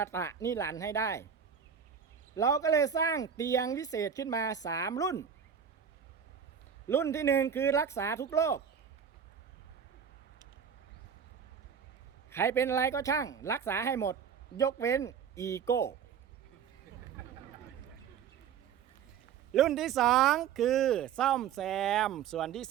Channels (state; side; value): quieter; left; 7.6 dB